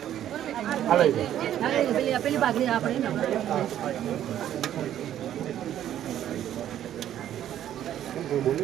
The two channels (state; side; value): quieter; left; 11.3 dB